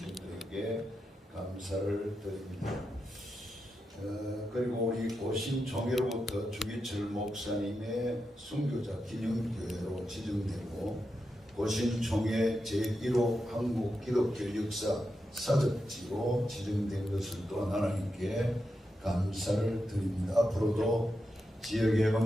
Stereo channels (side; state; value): both; normal; correlation 0.87